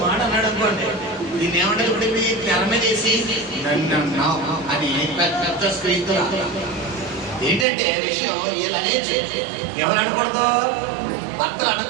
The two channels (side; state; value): left; drops out; at 7.7 s